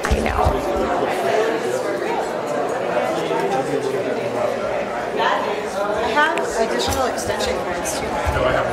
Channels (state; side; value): identical; both; correlation 1.00